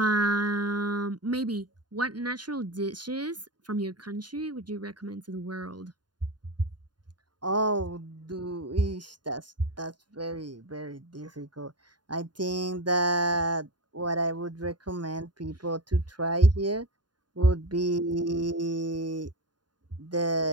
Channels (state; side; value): late; left; 0.70 ms